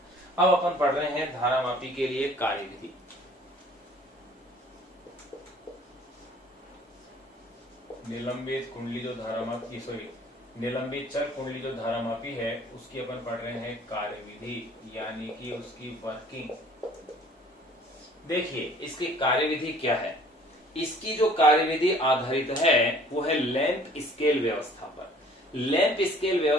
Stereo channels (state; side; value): normal; both; correlation 0.53